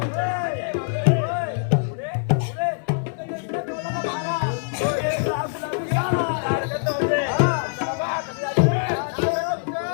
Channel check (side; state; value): right; silent; 62 dB below the other